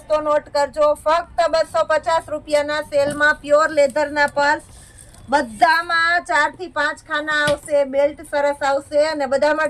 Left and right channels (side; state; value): both; identical; correlation 1.00